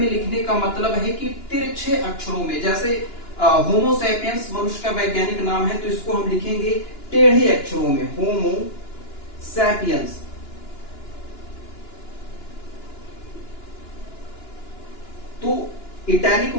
लिखने का मतलब है कि तिरछे अक्षरों में, जैसे होमो सैपियंस मनुष्य का वैज्ञानिक नाम है तो इसको हम लिखेंगे टेढ़े अक्षरों में, होमो सैपियंस। तो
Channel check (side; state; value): right; late; 2.9 ms